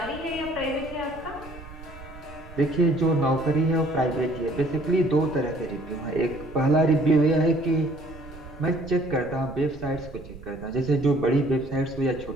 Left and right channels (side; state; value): right; noise; rumble, 17 dB below the sound